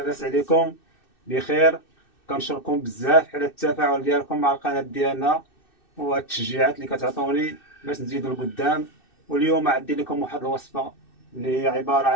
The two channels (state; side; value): late; right; 2.6 ms